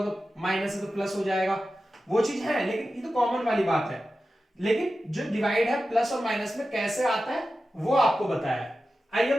तो माइनस है तो प्लस हो जाएगा, वो चीज है, लेकिन ये तो कॉमन वाली बात है। लेकिन जो डिवाइड है प्लस और माइनस में कैसे आता है वो आपको बताया है। आइए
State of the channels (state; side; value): normal; both; correlation 0.93